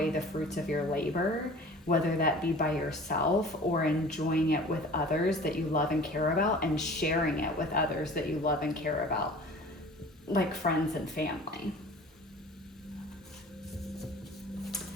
the fruits of your labor, whether that be by yourself or enjoying it with others that you love and care about, and sharing it with others that you love and care about, like friends and family.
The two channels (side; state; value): both; normal; correlation 0.44